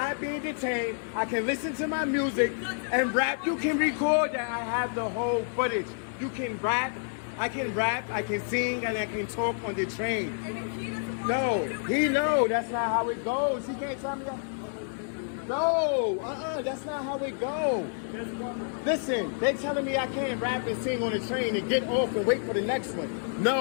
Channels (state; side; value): silent; right; digital silence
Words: being detained. I can listen to my music and rap. You can record that. I have the whole footage. You can rap. I can rap. I can sing and I can talk on the train. No, that's not how it goes. He can't tell me that. No, that's not how it goes. Listen, they're telling me I can't rap and sing on the train and get off and wait for the next one.